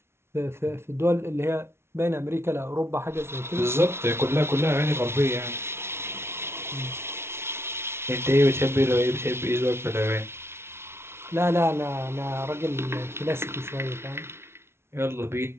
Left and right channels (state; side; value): late; left; 0.12 ms